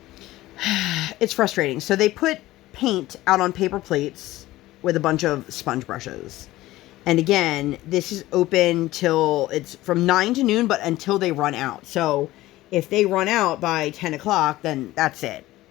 It's frustrating. So they put paint out on paper plates with a bunch of sponge brushes. And again, this is open till it's from 9 to noon, but until they run out. So if they run out by 10 o'clock, then that's it.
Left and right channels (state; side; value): quieter; right; 16.9 dB